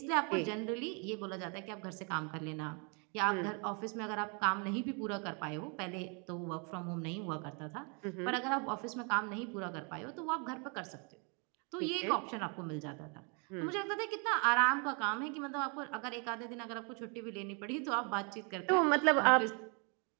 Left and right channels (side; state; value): left; quieter; 35.0 dB